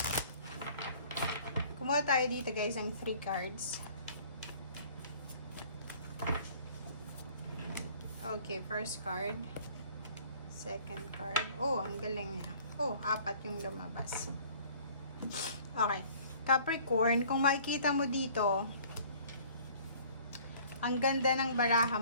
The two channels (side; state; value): both; inverted; correlation -0.52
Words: Kumuha tayo dito guys ng 3 cards. Okay, first card. Second card. Oh, ang galing niya. Oh, 4 yung lumabas. Okay. Capricorn, kung makikita mo dito, ang ganda ng baraha